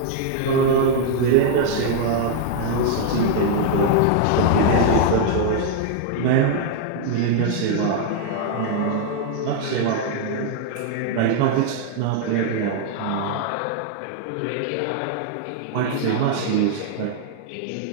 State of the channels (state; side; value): different; both; correlation 0.00